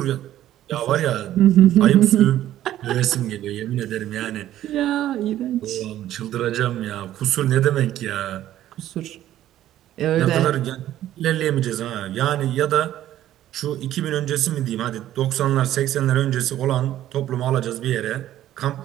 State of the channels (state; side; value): quieter; left; 12.9 dB